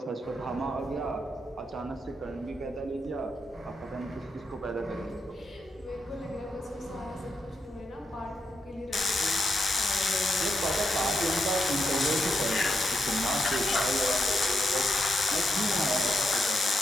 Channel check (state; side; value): normal; both; correlation 0.82